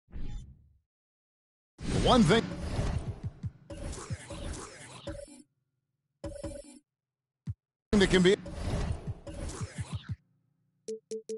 one thing that can be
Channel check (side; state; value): both; identical; correlation 1.00